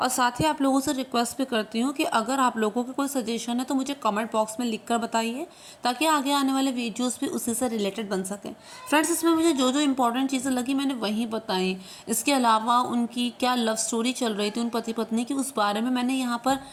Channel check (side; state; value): both; identical; correlation 1.00